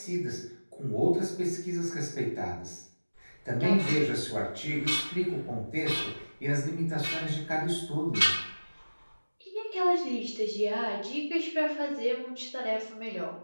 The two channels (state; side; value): inverted; both; correlation -1.00